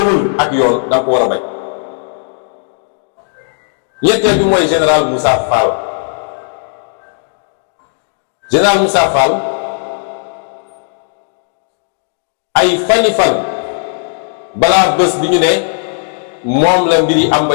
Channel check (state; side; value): silent; right; digital silence